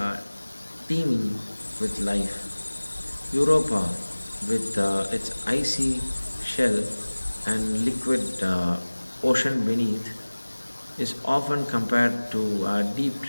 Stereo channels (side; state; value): both; inverted; correlation -1.00